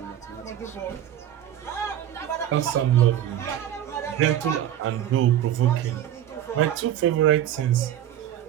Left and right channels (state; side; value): quieter; left; 11.2 dB